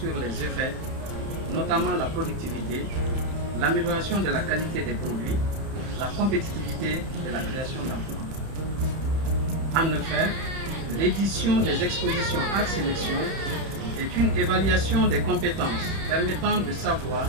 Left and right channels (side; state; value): left; late; 31 ms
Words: les effets, notamment la productivité, l'amélioration de la qualité des produits, la compétitivité et la création d'emplois. En effet, l'édition des expositions Art Sélection est une évaluation des compétences permettant de savoir